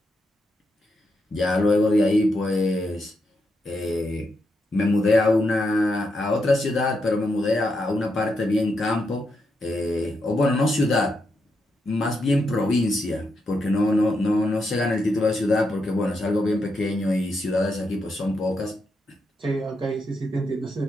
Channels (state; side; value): normal; both; correlation 0.83